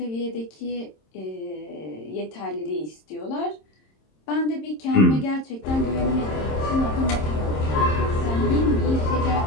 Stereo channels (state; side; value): late; right; 26 ms